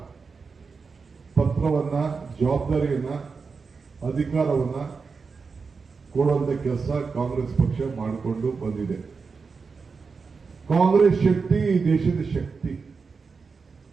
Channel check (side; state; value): left; quieter; 4.9 dB